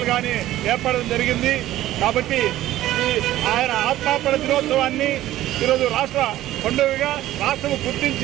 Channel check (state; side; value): quieter; left; 14.4 dB